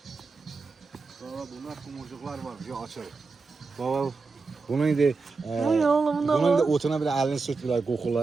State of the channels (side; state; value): left; quieter; 4.2 dB